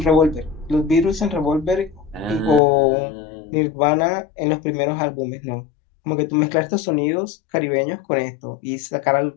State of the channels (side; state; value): right; drops out; at 2.6 s